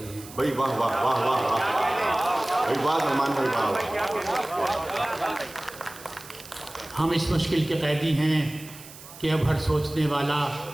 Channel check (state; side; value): noise; right; hiss, 17 dB below the sound